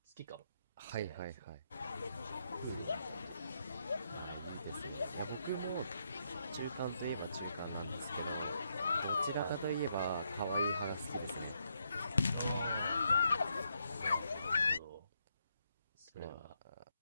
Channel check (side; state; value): both; inverted; correlation -0.78